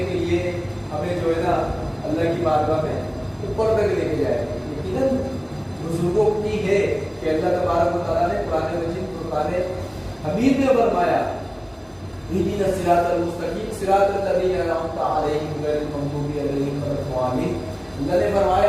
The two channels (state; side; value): identical; both; correlation 1.00